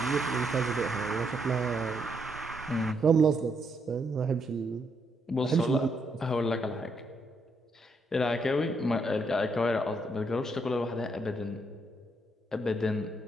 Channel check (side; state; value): both; normal; correlation 0.76